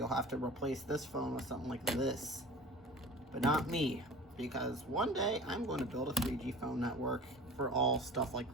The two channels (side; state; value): both; normal; correlation 0.40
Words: have to replace this phone with something like this. But not me, because one day I'm going to build a 3G phone network for all stuff